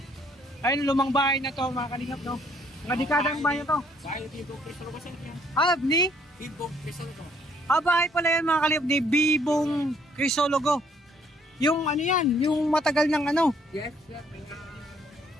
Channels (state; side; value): normal; both; correlation 0.65